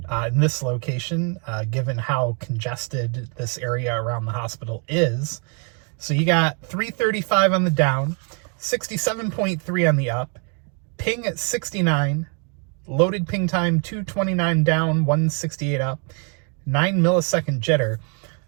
In this location, given how congested this area around the hospital is. So you got 335 on the down, 67.3 on the up, ping at 69, loaded ping time 229 down, 168 up, 9 millisecond jitter.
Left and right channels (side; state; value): left; quieter; 37.4 dB